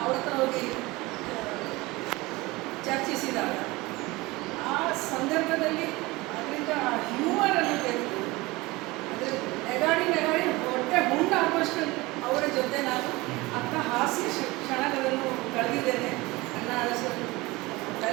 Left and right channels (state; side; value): quieter; left; 21.8 dB